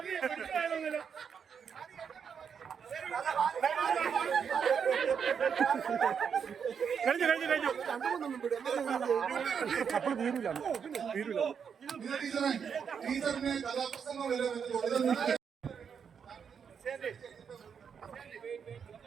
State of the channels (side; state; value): left; quieter; 7.0 dB